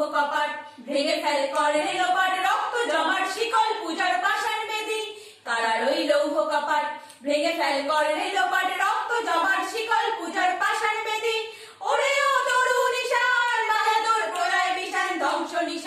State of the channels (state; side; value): identical; both; correlation 1.00